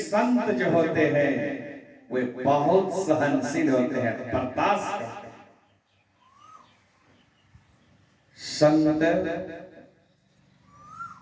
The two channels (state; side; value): identical; both; correlation 1.00